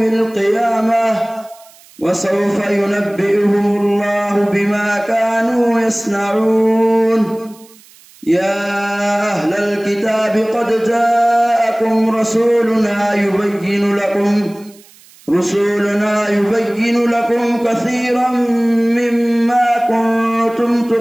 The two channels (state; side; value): noise; right; hiss, 26 dB below the sound